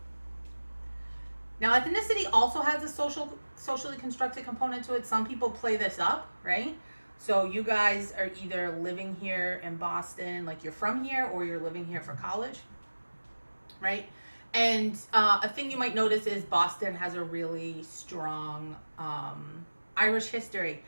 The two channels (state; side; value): inverted; both; correlation -1.00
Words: Now, ethnicity also has a socially constructed component to it. Some people play this up, right? So you guys are either living here in Boston, like you're from here, or you're living here for college, right? And a thing you might notice is Boston has a really strong Irish history.